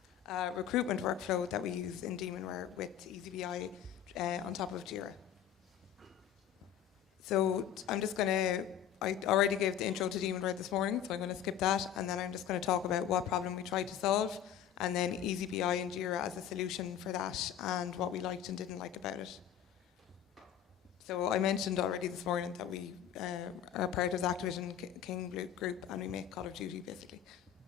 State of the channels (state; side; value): quieter; right; 9.8 dB